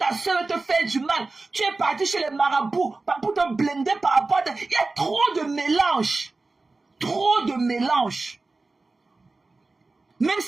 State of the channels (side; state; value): left; quieter; 3.5 dB